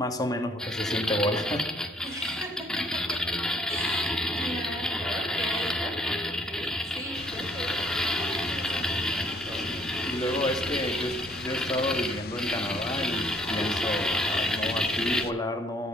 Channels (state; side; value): normal; both; correlation 0.63